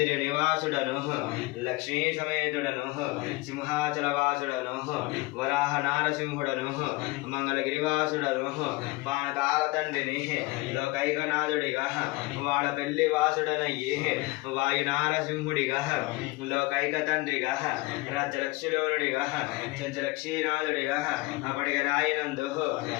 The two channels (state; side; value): quieter; right; 22.4 dB